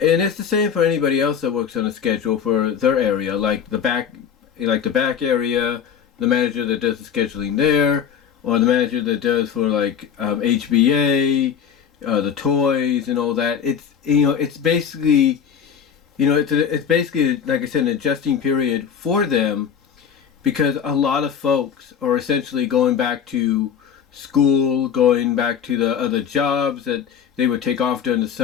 And it's the same for anybody else that works on a schedule for their area, like the back area, the manager that does the scheduling there, or the manager that does for like HBA, the toys and all that. It's basically, it's basically, like I said, an adjusting period for them, because a lot of folks are essentially going back to school, going back to the other jobs that they would take off during the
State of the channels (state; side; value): quieter; right; 7.9 dB